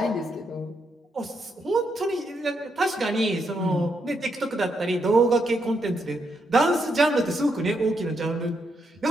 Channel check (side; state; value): both; normal; correlation 0.80